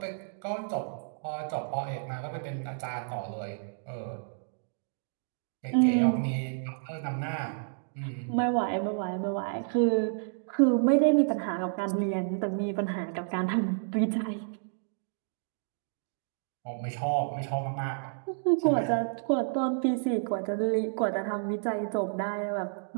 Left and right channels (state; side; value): silent; left; digital silence